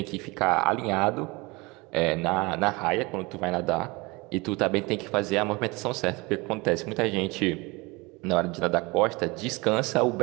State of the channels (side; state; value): left; quieter; 24.9 dB